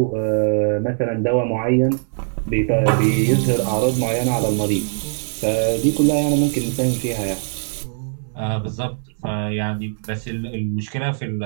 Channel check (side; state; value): left; silent; digital silence